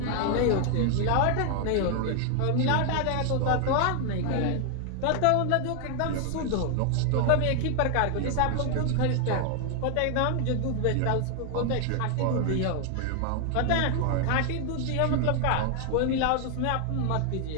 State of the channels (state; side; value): different; both; correlation 0.00